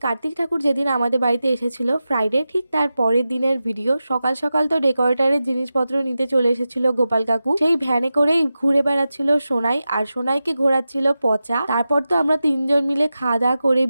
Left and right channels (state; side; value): inverted; both; correlation -0.93